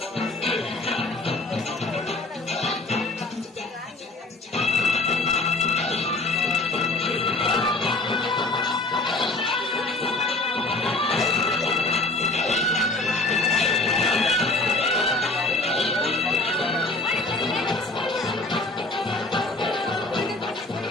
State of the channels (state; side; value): quieter; right; 3.0 dB